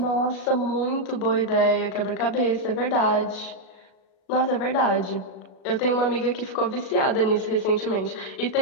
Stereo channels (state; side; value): late; right; 37 ms